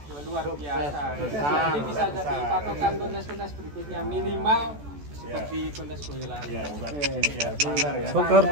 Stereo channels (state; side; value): late; left; 14 ms